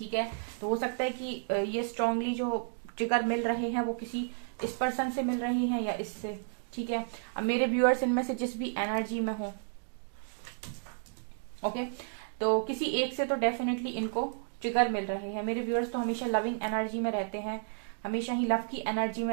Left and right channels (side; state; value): left; silent; digital silence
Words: है। तो हो सकता है कि ये स्ट्रांगली जो ट्रिगर मिल रहे हैं वो किसी इस पर्सन से मिल रहे हैं या इससे, ठीक है। अब मेरे व्यूअर्स इनमें से जिस भी एनर्जी में हो, ओके, तो किसी एक से तो डेफिनेटली इनको ट्रिगर मिल रहे हैं। मेरे व्यूअर्स तो हमेशा लविंग एनर्जी में रहते हैं, हमेशा ही लव की एनर्जी